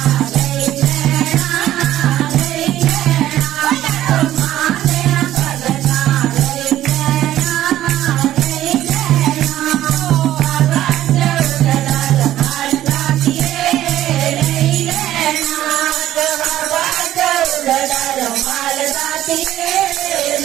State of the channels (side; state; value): left; quieter; 13.2 dB